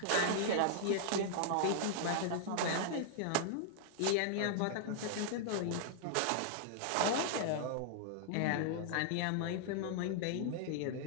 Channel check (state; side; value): different; both; correlation -0.01